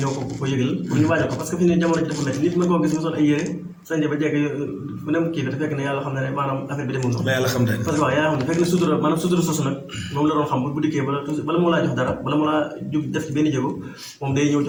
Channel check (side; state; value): both; identical; correlation 1.00